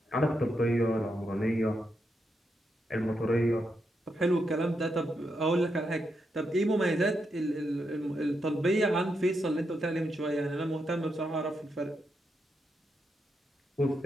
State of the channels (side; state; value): both; normal; correlation 0.83